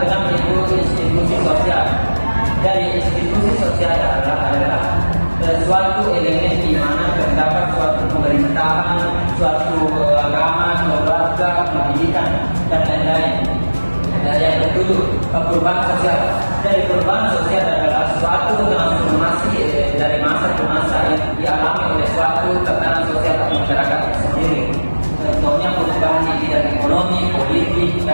keenam itu institusi sosial. Dari institusi sosial adalah suatu elemen di mana terdapat suatu pemerintahan, suatu agama, keluarga, pendidikan, dan lain-lain. Yang ketujuh, perubahan sosial. Dari perubahan sosial adalah suatu transformasi dari masa ke masa yang dialami oleh suatu tatanan sosial atau masyarakat sendiri. Contohnya perubahan di bidang ekonomi, politik,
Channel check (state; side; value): inverted; both; correlation -1.00